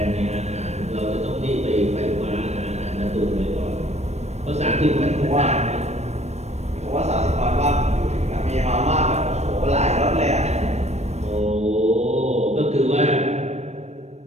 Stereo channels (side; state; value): left; late; 0.32 ms